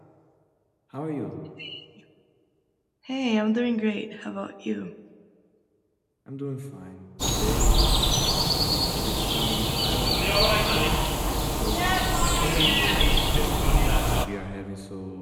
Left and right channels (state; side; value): identical; both; correlation 1.00